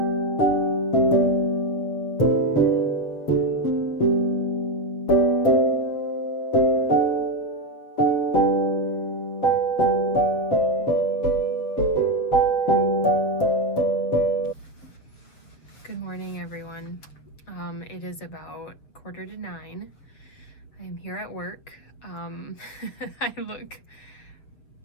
Good morning, everyone. It is about 8:45. I am here at work. I look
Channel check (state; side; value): late; right; 7.1 ms